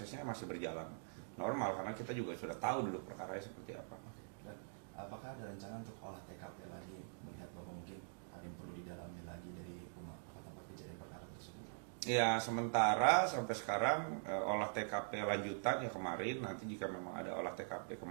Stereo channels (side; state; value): left; silent; digital silence